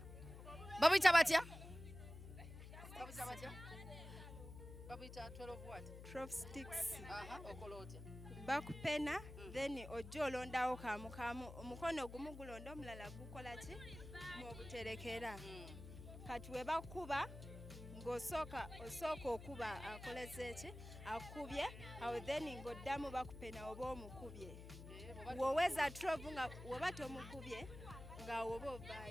Babuyita batya? Babuyita batya? Babuyita 12 what? 12 sticks. Okola otya? Bakupena, then ojja olondawo kamu. Omukono gumu gulonda omulala gukola ki? Mubuterekera. Kati we bakuba ng'osooka okuba akoleze ki? Akubye, awo then ng'oddamu bakupena oba omukubye. Woweza 12 nga woba tomukubye nga woba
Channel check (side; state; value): left; noise; hum, 12 dB below the sound